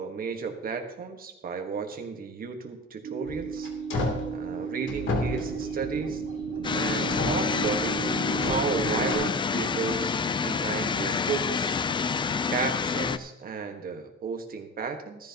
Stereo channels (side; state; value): both; normal; correlation 0.29